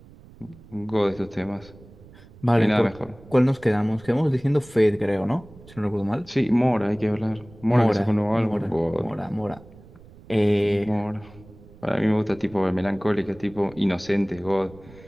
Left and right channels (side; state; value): right; noise; rumble, 22 dB below the sound